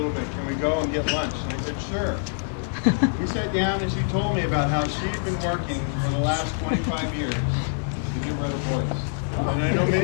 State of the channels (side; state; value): right; silent; digital silence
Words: bit. Can we go and get lunch? And I said, sure. We sat down and she told me about how she'd been working for the last 25 years to give her a voice. And I know